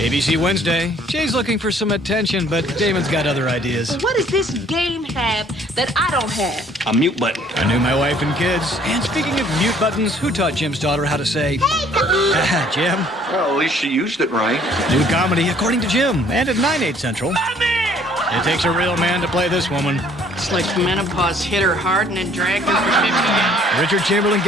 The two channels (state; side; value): normal; both; correlation 0.58